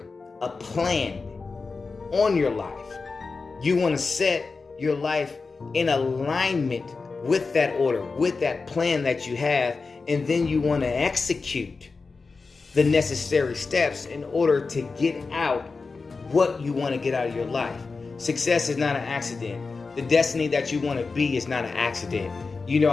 a plan on your life. You want to set your life in alignment with that order, with that plan that you have, and then you want to execute the necessary steps in order to get out what you want to get out of your life. Success is not an accident. The destiny that you want to be is not an accident. You know,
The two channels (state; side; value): quieter; right; 4.3 dB